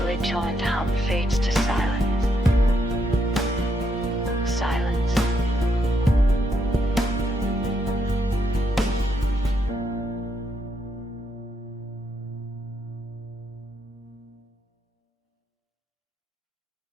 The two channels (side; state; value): both; normal; correlation 0.77